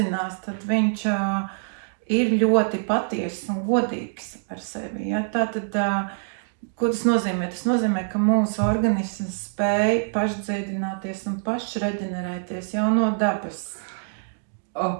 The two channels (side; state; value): left; silent; digital silence